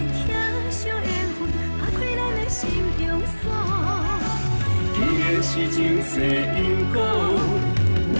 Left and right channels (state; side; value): inverted; both; correlation -1.00